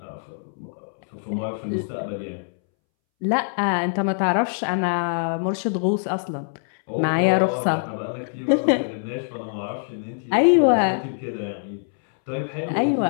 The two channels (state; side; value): silent; right; 63 dB below the other